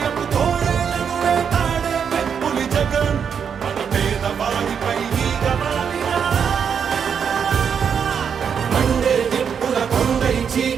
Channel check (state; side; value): quieter; left; 7.2 dB